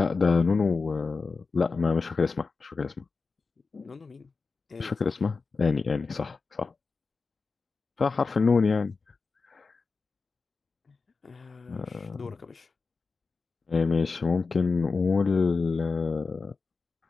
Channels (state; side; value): quieter; right; 4.4 dB